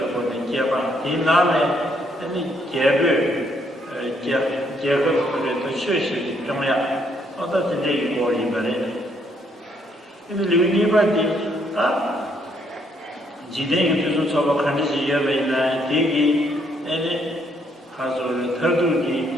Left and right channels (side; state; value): both; normal; correlation 0.71